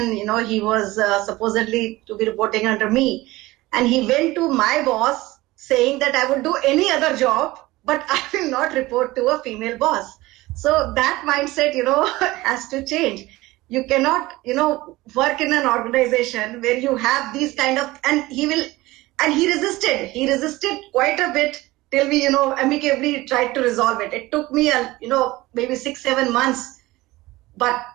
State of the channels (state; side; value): quieter; left; 19.3 dB